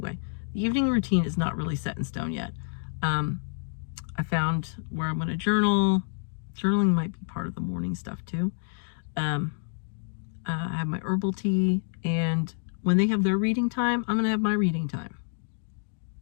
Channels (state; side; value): silent; right; digital silence